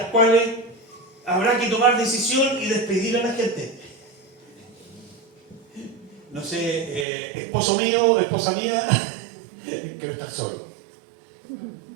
cuales habrá que tomar decisión y despedir a la gente. No sé, esposo mío, esposa mía, quiero estar solo.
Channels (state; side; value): drops out; left; at 7.1 s